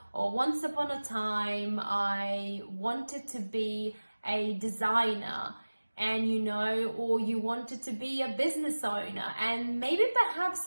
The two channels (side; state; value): both; inverted; correlation -1.00